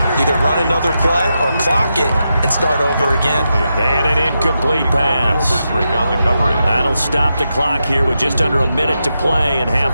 either run another play or clock it and start over again. And an incomplete pass. Break on the coverage. That'll stop the clock here with just under a minute to play in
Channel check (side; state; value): both; inverted; correlation -0.86